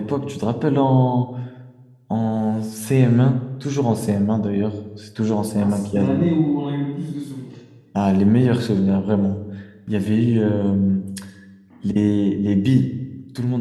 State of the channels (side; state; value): both; identical; correlation 1.00